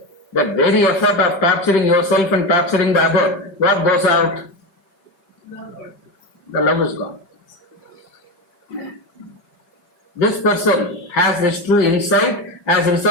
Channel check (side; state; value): right; late; 5.2 ms